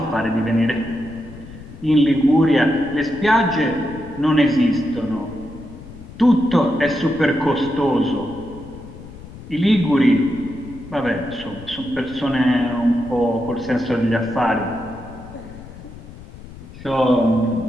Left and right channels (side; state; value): left; noise; rumble, 16 dB below the sound